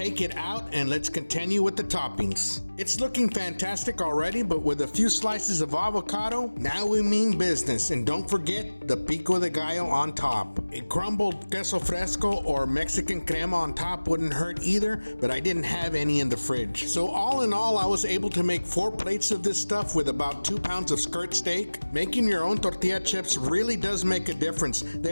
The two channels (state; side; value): inverted; both; correlation -1.00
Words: it out and let's continue with the toppings. It's looking fantastic already, but with a few slices of avocado, now we mean business. And don't forget the pico de gallo on top. A crumbled queso fresco or Mexican crema on top wouldn't hurt either, but I didn't have any in the fridge. So all in all, I was able to make 4 plates of this stuff with about 2 pounds of skirt steak. Making your own tortilla chips really does make a difference.